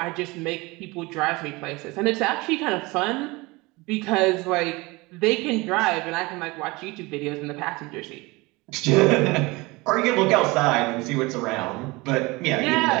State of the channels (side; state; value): left; quieter; 23.5 dB